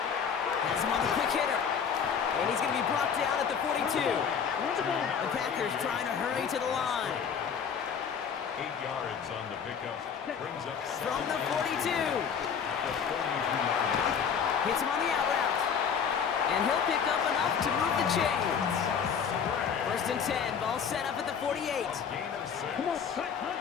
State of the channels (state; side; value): quieter; right; 7.0 dB